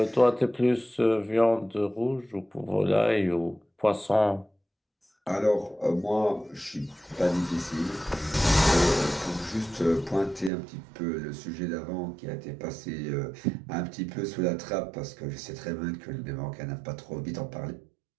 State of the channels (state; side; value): drops out; left; at 10.5 s